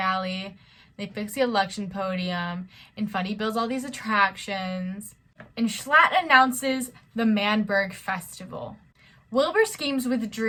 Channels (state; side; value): identical; both; correlation 1.00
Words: they fix the election podium, and Fundy builds all these attractions. And Schlatt announces the Berg Festival. Wilbur schemes with